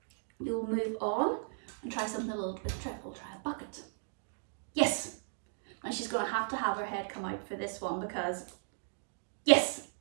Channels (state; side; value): silent; left; digital silence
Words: We'll move on and try something a little bit tricky. We'll try a bucket. Yes, and she's going to have her head come out for this one, because yes,